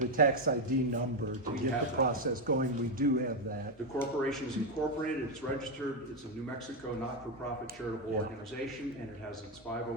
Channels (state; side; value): normal; both; correlation 0.05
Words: tax ID number to We get have the that. process going, we do have that. The corporation is incorporated, it's registered, it's a New Mexico not-for-profit charitable organization, and it has its